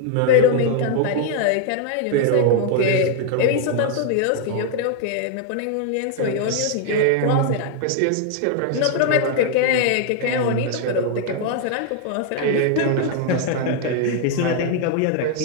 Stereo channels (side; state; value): both; different; correlation 0.00